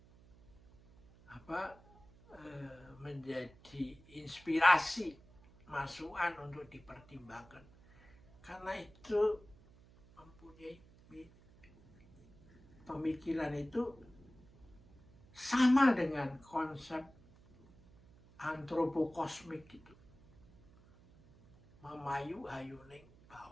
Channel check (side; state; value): right; noise; hum, 25 dB below the sound